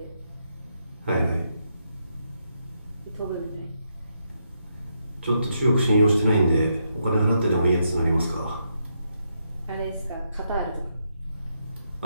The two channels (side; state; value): both; inverted; correlation -0.80